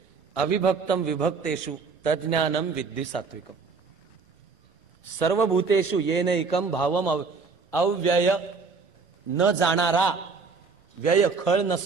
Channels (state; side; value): quieter; left; 4.7 dB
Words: अविभक्तम विभक्तेषु तज्ज्ञानम विद्धि सात्विकम. सर्वभूतेषु येनैकम भावम अव्यय, न जाणारा, व्यय खळ